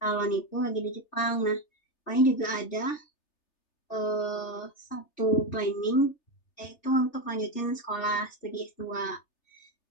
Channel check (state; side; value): late; right; 3.3 ms